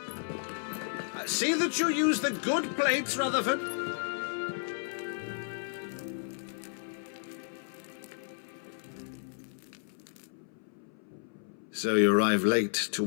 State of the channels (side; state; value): right; silent; 56 dB below the other